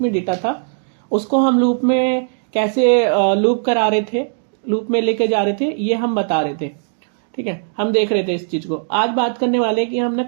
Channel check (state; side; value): silent; left; 67 dB below the other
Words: में डेटा था, उसको हम लूप में कैसे लूप करा रहे थे, लूप में लेके जा रहे थे, ये हम बता रहे थे। ठीक है, हम देख रहे थे इस चीज को। आज बात करने वाले हैं कि हमने